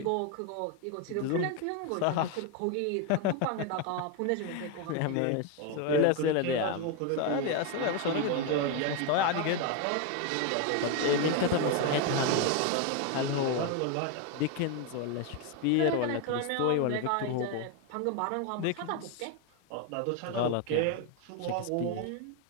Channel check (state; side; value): different; both; correlation 0.01